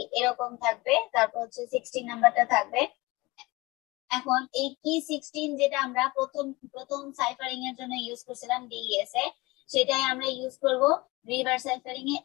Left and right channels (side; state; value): right; quieter; 22.5 dB